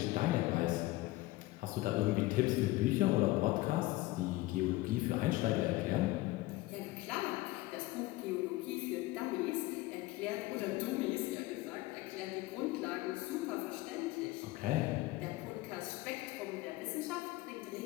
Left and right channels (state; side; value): quieter; right; 19.2 dB